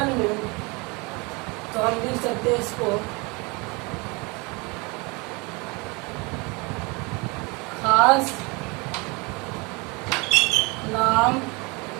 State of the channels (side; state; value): left; quieter; 28.0 dB